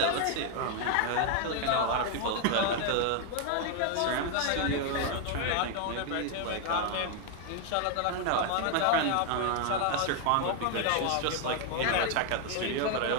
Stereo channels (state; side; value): different; both; correlation 0.01